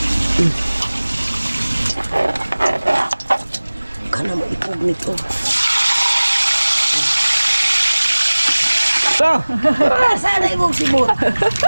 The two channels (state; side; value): inverted; both; correlation -1.00